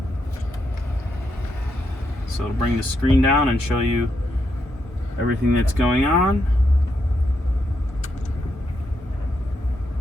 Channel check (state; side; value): normal; both; correlation 0.81